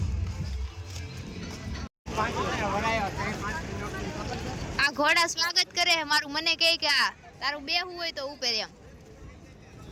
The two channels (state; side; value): identical; both; correlation 1.00